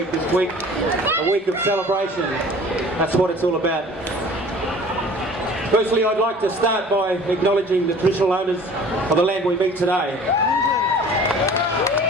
this week, a week of celebration. That's what it's all about. Firstly, I'd like to start by acknowledging the traditional owners of the land we meet today.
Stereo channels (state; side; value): normal; both; correlation 0.47